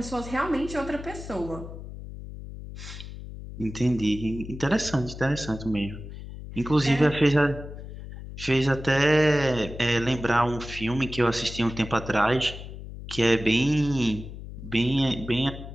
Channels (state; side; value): noise; left; hum, 11 dB below the sound